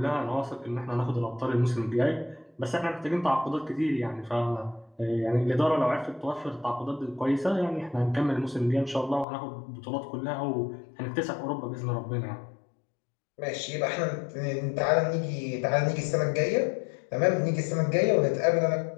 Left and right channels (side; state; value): right; drops out; at 9.2 s